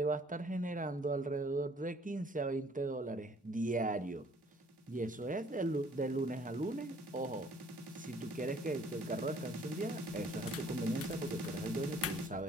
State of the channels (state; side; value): normal; both; correlation 0.58